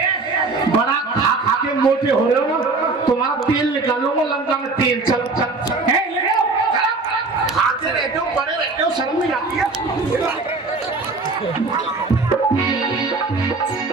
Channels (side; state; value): left; quieter; 3.8 dB